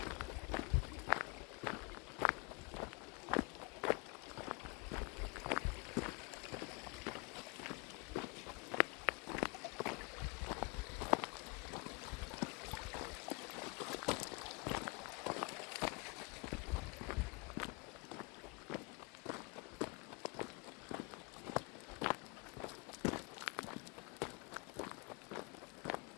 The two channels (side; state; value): right; quieter; 30.3 dB